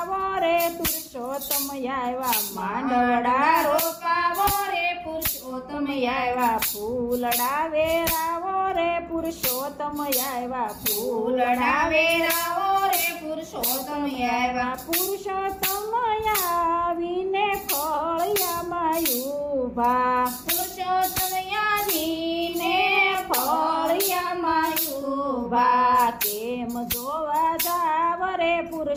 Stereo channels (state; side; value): identical; both; correlation 1.00